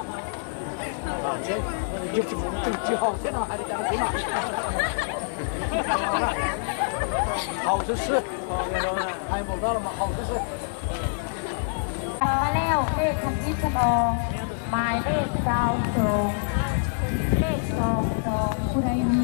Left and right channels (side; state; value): right; silent; digital silence